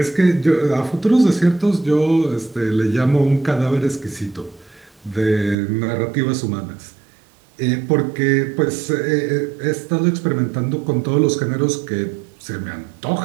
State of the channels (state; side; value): drops out; left; at 5.6 s